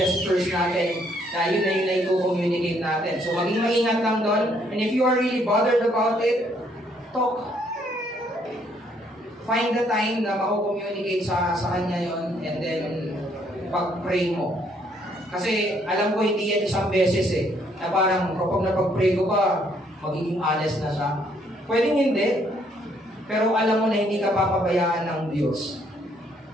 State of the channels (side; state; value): both; normal; correlation 0.68